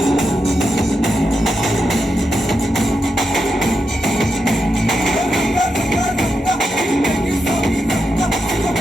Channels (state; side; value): normal; both; correlation 0.86